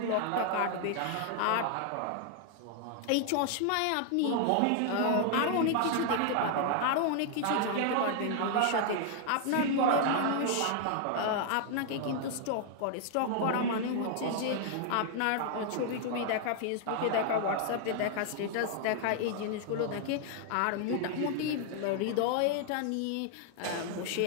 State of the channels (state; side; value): different; both; correlation 0.00